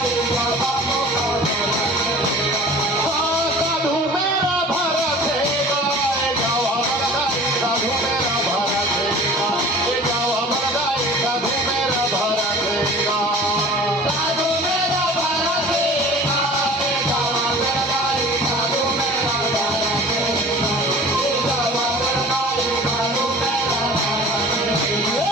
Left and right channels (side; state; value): both; normal; correlation 0.43